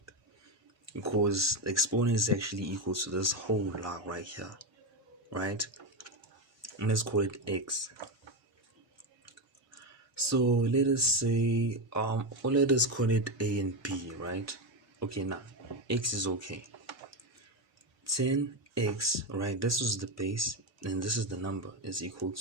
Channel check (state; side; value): normal; both; correlation 0.12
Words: because the exponent is actually equal to this whole log right here, right, and let's call it x. So let us say or let us call it a and b, right? Okay, now x is okay, 10x, right, this is the base and this is the number, is equal